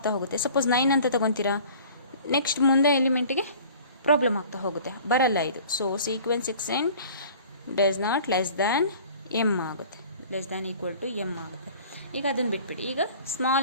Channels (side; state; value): both; inverted; correlation -0.47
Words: ಹೋಗುತ್ತೆ. ಸಪೋಸ್ 9 ಅಂತ ತಗೊತೀರಾ, ನೆಕ್ಸ್ಟ್ ಮುಂದೆ ಎಲಿಮೆಂಟಿಗೆ ಪ್ರಾಬ್ಲಮ್ ಆಗ್ತಾ ಹೋಗುತ್ತೆ, ಬರಲ್ಲ ಇದು. So sequence x n does not less than m ಆಗುತ್ತೆ, less than equal to m ಆಗುತ್ತೆ. ಈಗ ಅದನ್ನು ಬಿಟ್ಬಿಡಿ. ಈಗ ಸ್ಮಾಲ್